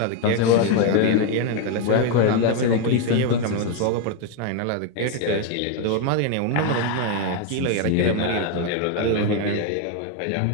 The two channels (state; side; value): different; both; correlation 0.01